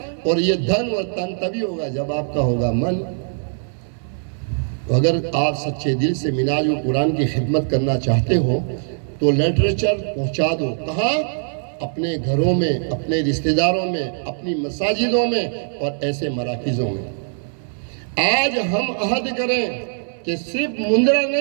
اور یہ دھن اور تن تبھی ہوگا جب آپ کا ہوگا من۔ اگر آپ سچے دل سے منہاج القرآن کی خدمت کرنا چاہتے ہو تو لٹریچر پہنچا دو، کہاں؟ اپنے گھروں میں، اپنے رشتہ داروں میں، اپنی مساجدوں میں اور ایسے مراکزوں میں۔ آج ہم عہد کریں کہ صرف مندرا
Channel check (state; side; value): silent; left; 65 dB below the other